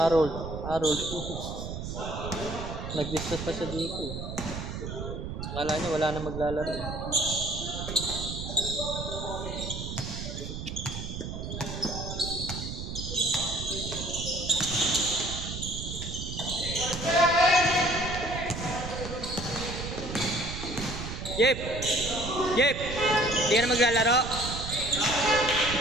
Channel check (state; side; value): noise; right; rumble, 6 dB below the sound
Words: Nag-discuss pa siya dito. Akala niya wala na maglalaro. Jep! Hindi ka na maglalaro?